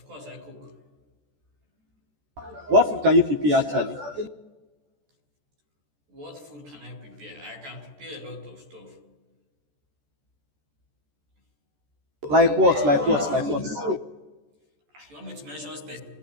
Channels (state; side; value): late; left; 14 ms